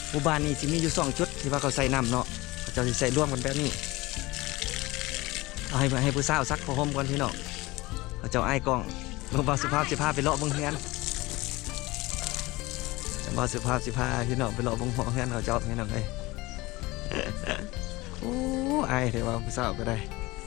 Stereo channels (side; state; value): right; quieter; 21.0 dB